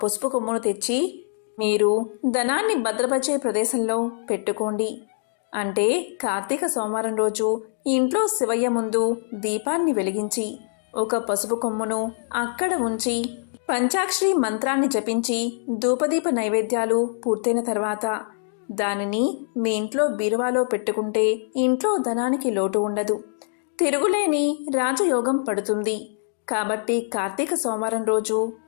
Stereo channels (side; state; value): right; silent; digital silence